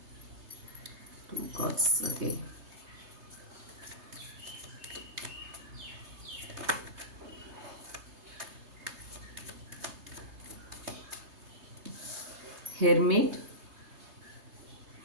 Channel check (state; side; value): late; left; 3.3 ms